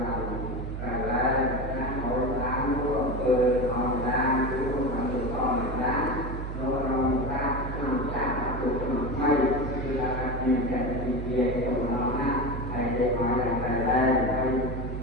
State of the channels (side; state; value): right; noise; hum, 6 dB below the sound